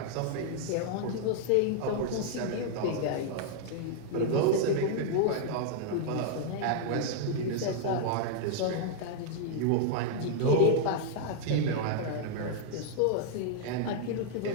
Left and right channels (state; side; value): different; both; correlation -0.01